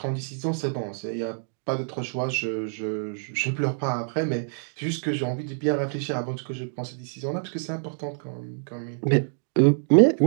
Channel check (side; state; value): left; silent; digital silence